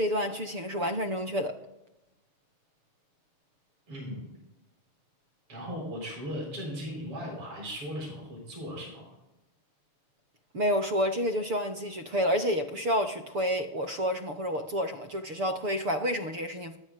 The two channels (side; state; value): left; late; 6.8 ms